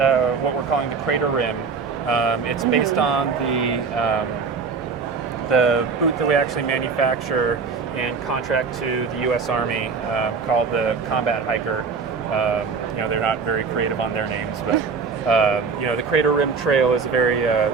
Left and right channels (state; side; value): quieter; left; 5.2 dB